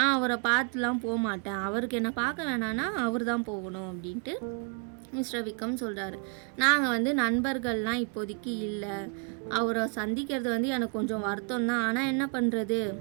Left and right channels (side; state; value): left; quieter; 39.3 dB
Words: அவரை பார்த்துலாம் போக மாட்டேன், அவருக்கு என்னை பார்க்க வேணான்னா அவர் தான் போகணும் அப்படின்ட்டு மிஸ்டர் விக்ரம் சொல்கிறாரு. நாங்கள் வந்து நண்பர்கள்லாம் இப்போதைக்கு இல்லை, அவரை சந்திக்கிறது வந்து எனக்கு கொஞ்சம் வருத்தம் தான், ஆனால் என்ன பண்ணுறது,